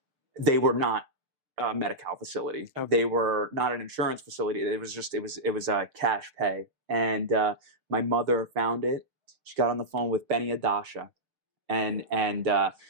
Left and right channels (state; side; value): late; left; 6.7 ms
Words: they were not a Medi-Cal facility. Okay. They were not an insurance facility. It was a cash pay. And my mother found it. She got on the phone with Benny Adasha, and